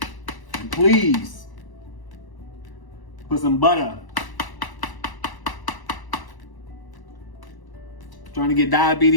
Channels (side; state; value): right; late; 1.0 ms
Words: And please, put some butter. Trying to get